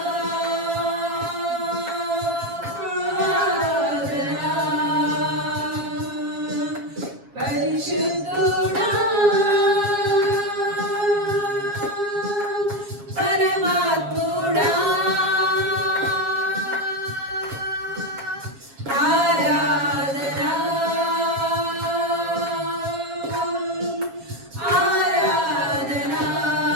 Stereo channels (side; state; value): left; late; 7.3 ms